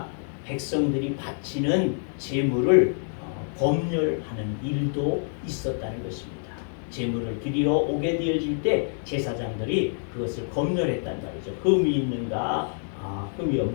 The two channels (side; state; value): right; silent; digital silence